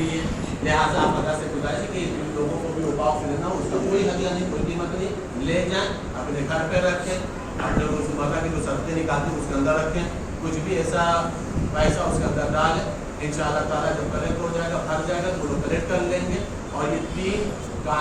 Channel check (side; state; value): both; identical; correlation 1.00